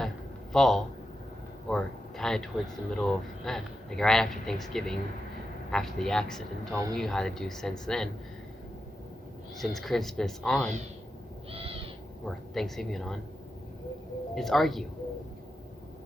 fall, or kind of towards the middle of, like right after Thanksgiving, after the accident, all we knew how to do since then, since Christmas on, or Thanksgiving on, is argue.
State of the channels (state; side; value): normal; both; correlation 0.88